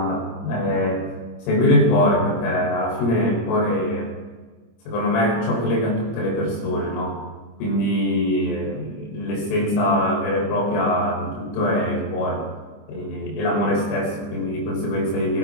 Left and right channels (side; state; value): right; late; 25 ms